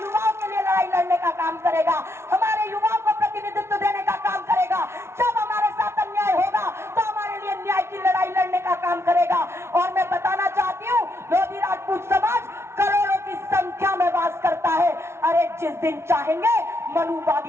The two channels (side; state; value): left; late; 0.13 ms